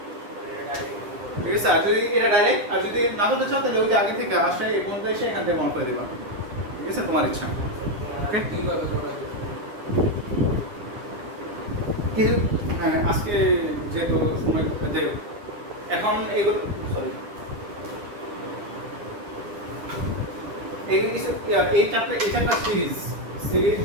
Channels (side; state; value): left; late; 9.7 ms